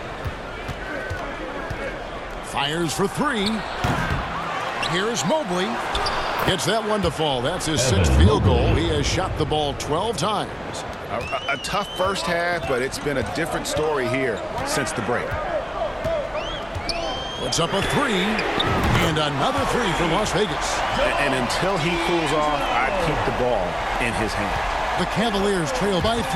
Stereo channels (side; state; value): both; identical; correlation 1.00